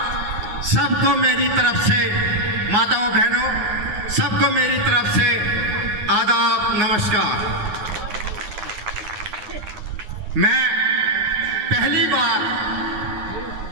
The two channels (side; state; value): left; late; 9.6 ms